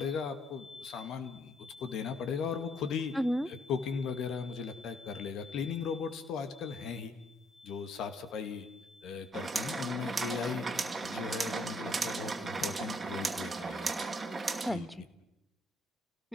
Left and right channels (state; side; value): normal; both; correlation 0.69